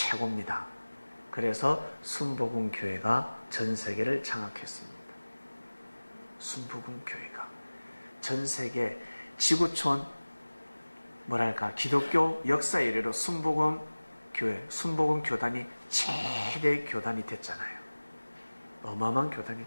그래서 순복음교회가 전 세계를 장악했습니다. 순복음교회가 전 세계 지구촌 기독교 역사 이래로 순복음교단이 최대 교단이 됐잖아요. 어마어마한 교단이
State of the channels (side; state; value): both; inverted; correlation -1.00